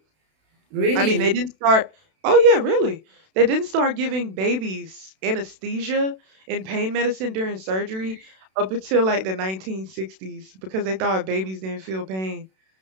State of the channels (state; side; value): late; left; 32 ms